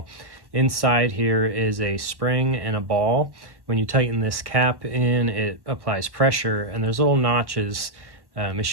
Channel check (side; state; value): left; late; 1.1 ms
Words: Inside here is a spring and a ball. When you tighten this cap in, it applies pressure, and there's little notches